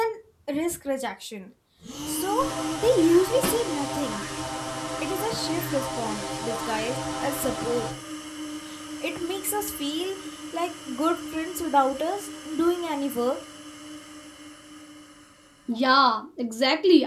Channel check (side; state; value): both; identical; correlation 1.00